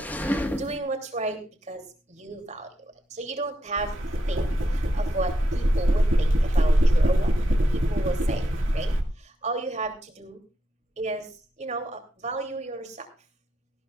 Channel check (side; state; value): both; normal; correlation 0.83